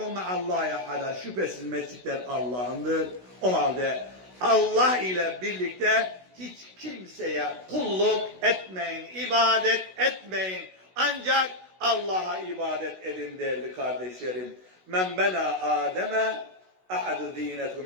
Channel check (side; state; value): left; late; 16 ms